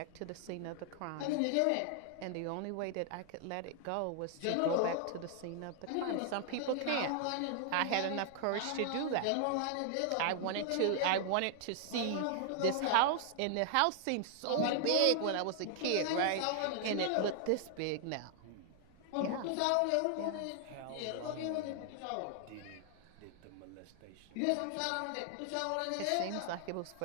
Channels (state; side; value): different; both; correlation 0.00